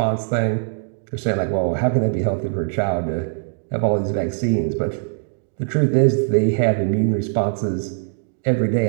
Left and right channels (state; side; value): silent; left; 65 dB below the other